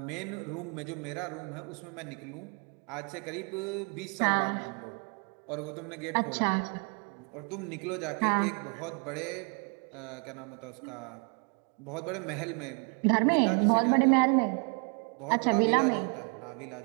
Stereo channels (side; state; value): left; quieter; 38.0 dB